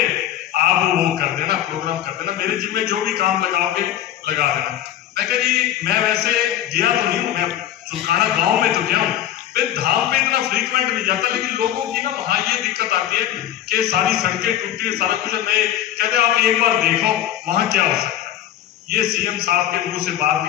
आप वो कर देना, प्रोग्राम कर देना, मेरे जिम्मे जो भी काम लगाओगे लगा देना। मैं कहा जी मैं वैसे गया तो नहीं हूँ, मैं चुलकाना गांव में तो गया हूँ, मैं धाम पे इतना फ्रीक्वेंट नहीं जाता, लेकिन लोगों की ना वहां ये दिक्कत आती है कि सारी सड़कें टूटी है, सारा कुछ है। मैं कहते आप एक बार देखो वहां क्या हो सकता है। ये सीएम साहब के मुंह से बात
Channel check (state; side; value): quieter; right; 11.7 dB